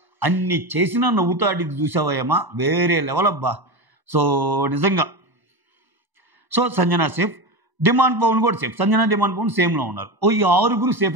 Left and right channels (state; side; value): late; left; 1.0 ms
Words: అన్ని చేసినా నవ్వుతాడు. ఇది చూసావయ్యమ్మా వేరే లెవెల్ అబ్బా. సో నిజంగా. So Sanjana safe. Demon Pavan కూడా సేఫ్. సంజన డిమాండ్ పవన్ సేమ్లో ఉన్నారు. ఈ 6